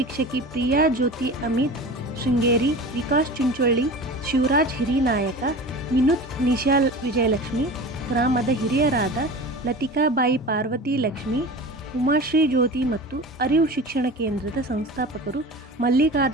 ಪ್ರಿಯಾ ಜ್ಯೋತಿ ಅಮಿತ್ ಶೃಂಗೇರಿ, ವಿಕಾಸ್ ಚುಂಚೊಳ್ಳಿ, ಶಿವರಾಜ್ ಹಿರಿನಾಯಕ, ವಿನುತ್ ನಿಶಾಲ್ ವಿಜಯಲಕ್ಷ್ಮಿ, ಗ್ರಾಮದ ಹಿರಿಯರಾದ ಲತಿಕಾಬಾಯಿ ಪಾರ್ವತಿ ಲಕ್ಷ್ಮಿ, ಉಮಾಶ್ರೀ ಜ್ಯೋತಿ ಮತ್ತು ಅರಿವು ಶಿಕ್ಷಣ ಕೇಂದ್ರದ ಸಂಸ್ಥಾಪಕರು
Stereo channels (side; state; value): both; normal; correlation 0.35